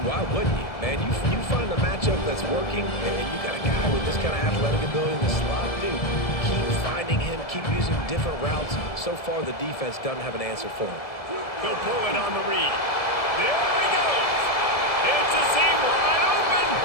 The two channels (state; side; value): late; right; 1.7 ms